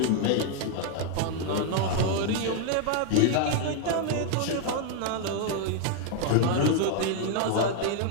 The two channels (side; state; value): both; different; correlation 0.00